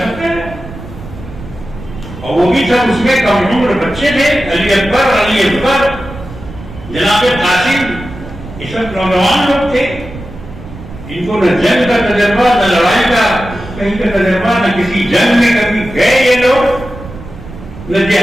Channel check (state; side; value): noise; right; rumble, 14 dB below the sound